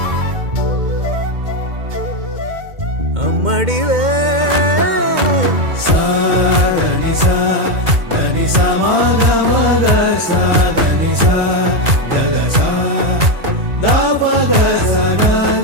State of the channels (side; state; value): left; late; 2.1 ms